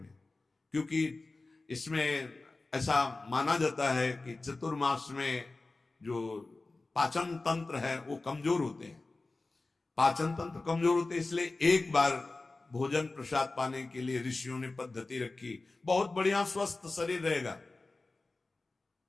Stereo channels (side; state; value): right; quieter; 3.4 dB